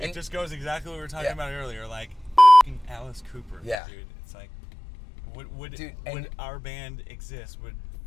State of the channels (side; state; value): right; drops out; at 3.8 s